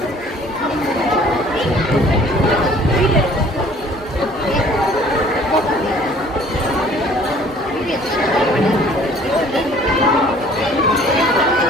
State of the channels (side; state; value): both; normal; correlation 0.54